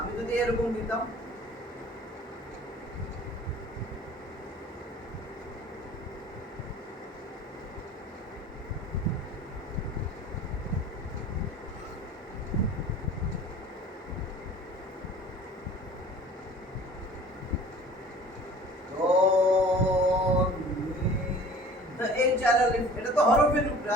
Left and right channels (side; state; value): both; normal; correlation 0.46